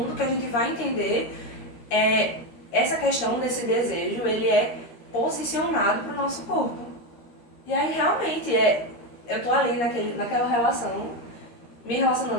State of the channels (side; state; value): right; late; 13 ms